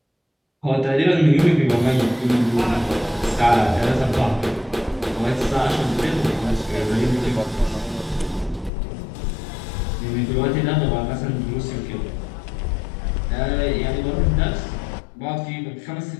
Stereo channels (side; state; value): right; drops out; at 8.7 s